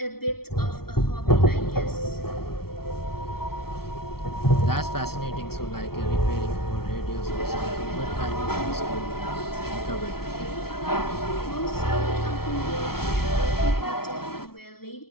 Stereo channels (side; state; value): right; late; 0.94 ms